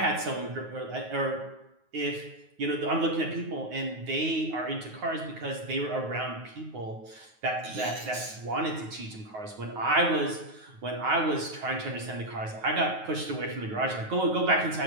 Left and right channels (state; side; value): late; left; 9.4 ms